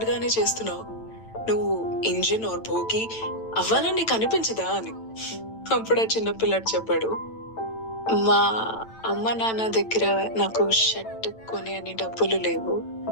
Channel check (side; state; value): right; late; 9.0 ms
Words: గానే చేస్తున్నావు, నువ్వు ఇంజిన్ ఆర్ భోగి అవ్వాలని నీకు అనిపించదా అని. అప్పుడు ఆ చిన్న పిల్లాడు చెప్పాడు, మా అమ్మ నాన్న దగ్గర నాకు షర్ట్ కొని అని డబ్బులు లేవు,